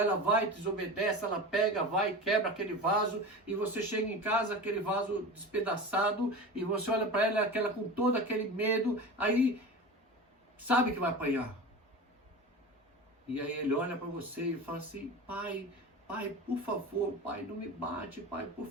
vai, desobedece, ela pega, vai, quebra aquele vaso, e você chega em casa, aquele vaso despedaçado, e você olha para ela, aquela com todo aquele medo, aí sabe que vai apanhar. E aí ele olha para você e fala assim: pai, por favor, pai, não me bate, pai, por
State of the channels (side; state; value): both; normal; correlation 0.31